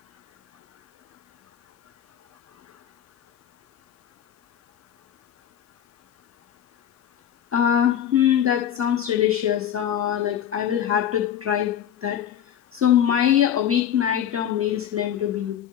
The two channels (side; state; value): right; quieter; 9.9 dB